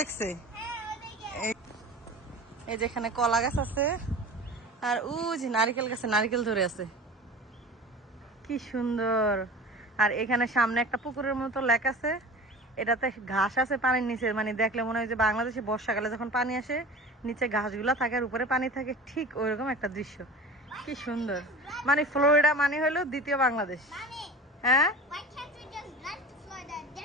এই যেখানে কলা গাছ আছে, আর ওই যে নারিকেল গাছে নারিকেল ধরে আছে, কি সুন্দর। আর এখানে সামনে একটা পুকুরের মতো লেক আছে, এটাতে ঘাস আছে পানির নিচে, মানে দেখলে মনে হয় যে বাংলাদেশে বর্ষাকালে যখন পানি আসে নিচে ঘাসগুলা থাকে আর উপরে পানি থাকে, ঠিক ওইরকম একটা দৃশ্য, কি সুন্দর। মানে ফ্লোরিডা মানে হলো দ্বিতীয় বাংলাদেশ। হ্যাঁ,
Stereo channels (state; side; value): normal; both; correlation 0.36